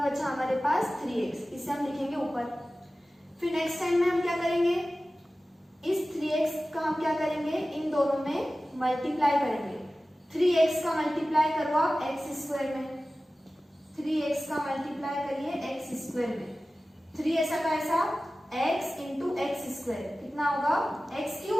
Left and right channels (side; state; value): both; normal; correlation 0.96